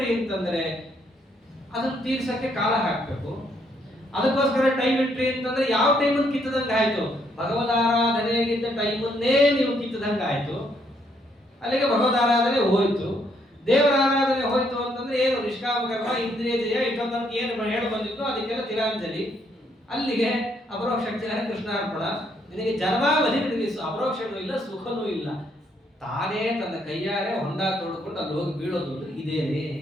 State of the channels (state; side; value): normal; both; correlation 0.72